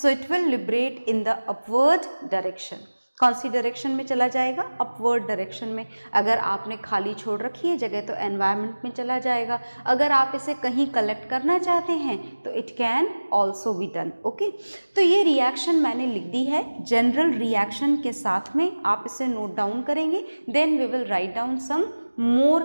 it will liberate in the upward direction। कौन सी डायरेक्शन में चला जाएगा? अपवर्ड डायरेक्शन में। अगर आपने खाली छोड़ रखी है जगह तो एनवायरनमेंट में चला जाएगा। अगर आप इसे कहीं कलेक्ट करना चाहते हैं तो it can also be done. Okay, तो ये रिएक्शन मैंने लिख दी है जनरल रिएक्शन के साथ में, आप इसे नोट डाउन करेंगे। Then we will write down some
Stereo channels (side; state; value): both; inverted; correlation -1.00